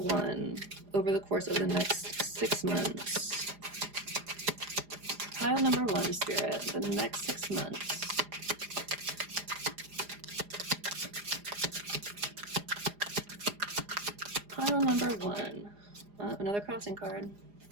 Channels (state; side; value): late; left; 4.9 ms